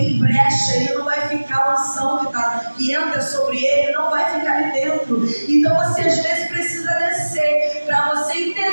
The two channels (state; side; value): inverted; both; correlation -1.00